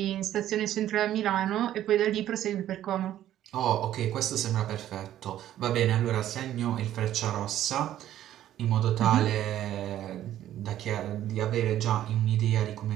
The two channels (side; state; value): left; quieter; 12.3 dB